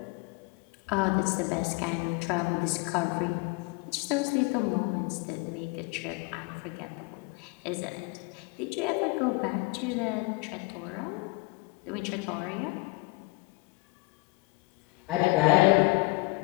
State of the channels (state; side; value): quieter; right; 26.1 dB